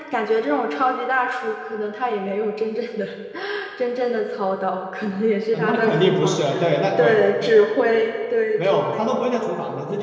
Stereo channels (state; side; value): identical; both; correlation 1.00